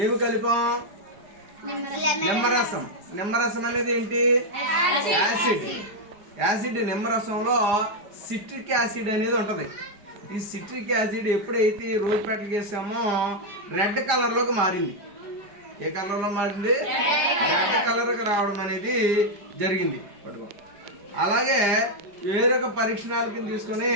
ఏమి కలిపాం? నిమ్మరసం. నిమ్మరసం అనేది ఏంటి? యాసిడ్. యాసిడ్ నిమ్మరసంలో సిట్రిక్ యాసిడ్ అనేది ఉంటది. ఈ సిట్రిక్ యాసిడ్ ఎప్పుడైతే రోజ్ పెటల్ చేసామో రెడ్ కలర్ లోకి మారింది. ఏ కలర్ లో మారింది? రెడ్ కలర్ కి రావడం అనేది జరిగింది. పట్టుకో. అలాగే వేరొక పరీక్షణాళికని తీసుకొని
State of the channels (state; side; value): late; left; 4.9 ms